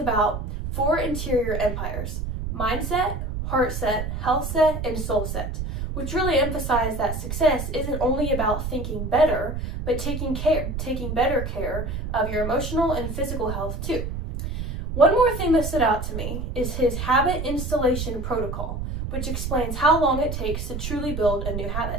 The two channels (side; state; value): right; noise; rumble, 4 dB below the sound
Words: 4 interior empires: mindset, heart set, health set, and soul set, which really emphasize that success isn't only about thinking better, but taking better care of your emotional and physical health too. One more thing that stood out to me is his habit installation protocol, which explains how long it takes to truly build a new